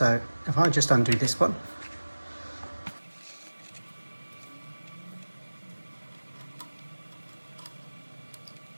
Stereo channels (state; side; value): inverted; both; correlation -1.00